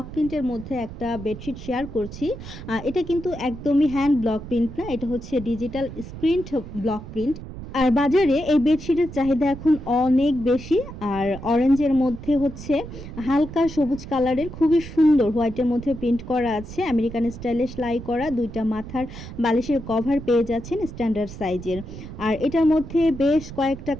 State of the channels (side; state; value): right; noise; rumble, 12 dB below the sound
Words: প্রিন্টের মধ্যে একটা বেডশিট শেয়ার করছি। এটা কিন্তু একদমই হ্যান্ড ব্লক প্রিন্ট না, এটা হচ্ছে ডিজিটাল স্ক্রিন ব্লক প্রিন্ট। আর বাজারে এই বেডশিটের চাহিদা এখন অনেক বেশি। আর অরেঞ্জের মধ্যে হচ্ছে হালকা সবুজ কালারের খুবই সুন্দর হোয়াইটের মধ্যে প্রিন্ট করা আছে, আমেরিকান স্টাইলে সেলাই করা দুইটা মাথার বালিশের কভার পেয়ে যাচ্ছেন স্ট্যান্ডার্ড সাইজের। আর এটার মধ্যে বেশ কয়েকটা